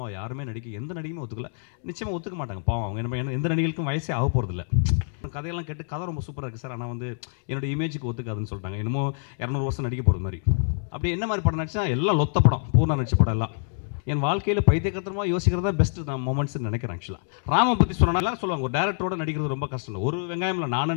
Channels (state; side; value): silent; right; digital silence